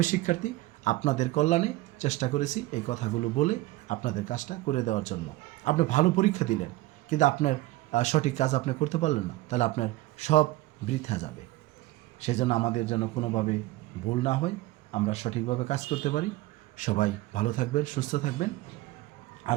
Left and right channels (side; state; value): left; quieter; 18.1 dB